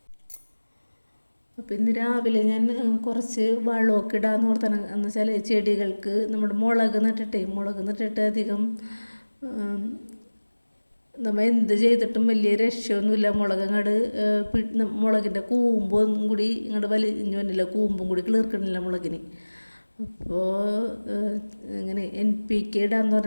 അപ്പം ഇന്ന് രാവിലെ ഞാൻ കുറച്ച് വളമൊക്കെ ഇടാമെന്ന് ഓർത്താണ്. എന്ന് വെച്ചാൽ ചെടികൾക്ക് നമ്മുടെ മുളക് നട്ടിട്ട് അധികം നമ്മൾ എന്ത് ചെയ്തിട്ടും വലിയ രക്ഷയൊന്നുമില്ല. മുളകിൻ്റെ കൂമ്പും കൂടി ഇങ്ങോട്ട് വലിഞ്ഞു വന്നില്ല, കൂമ്പും കൂടി കിളിർക്കണില്ല മുളകിന്. അപ്പോൾ ഇങ്ങനെ NPK ഇടാന്ന്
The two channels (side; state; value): both; inverted; correlation -1.00